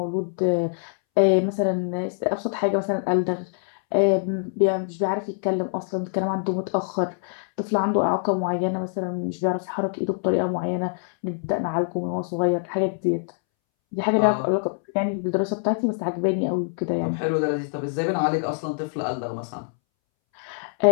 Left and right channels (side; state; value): right; silent; 62 dB below the other